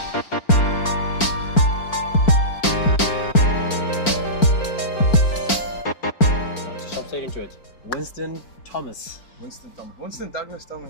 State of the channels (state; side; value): late; right; 4.5 ms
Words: Winston Thomas. Winston Douglas